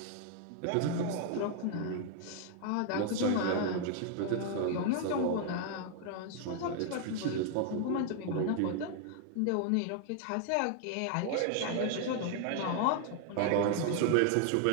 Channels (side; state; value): both; different; correlation 0.00